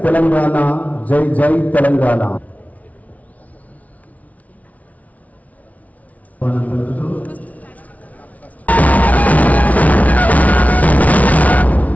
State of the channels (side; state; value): right; late; 0.070 ms